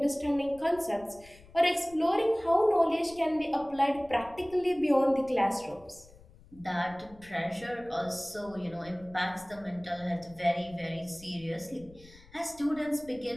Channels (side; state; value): left; noise; rumble, 23 dB below the sound